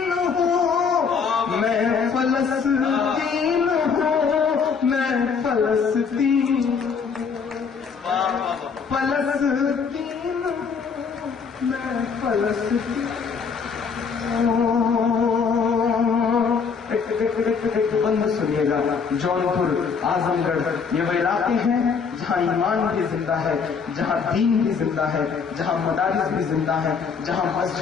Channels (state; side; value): quieter; right; 5.8 dB